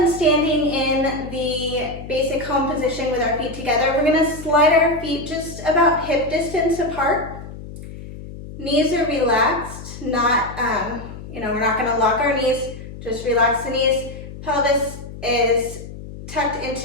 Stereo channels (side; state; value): left; noise; hum, 12 dB below the sound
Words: standing in the basic home position with our feet together, we're going to slide our feet just about hip distance apart. Knees are relaxed, not, we're not going to lock our knees, just relax the knees. Pelvis is tucked